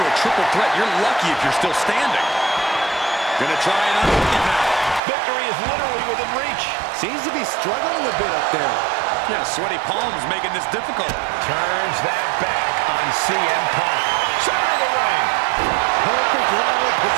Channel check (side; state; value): left; drops out; at 5.0 s